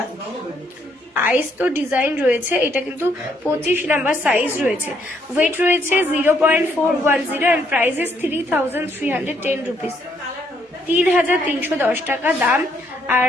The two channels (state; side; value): normal; both; correlation 0.71